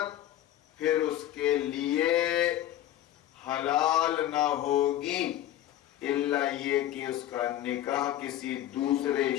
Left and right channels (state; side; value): quieter; right; 12.7 dB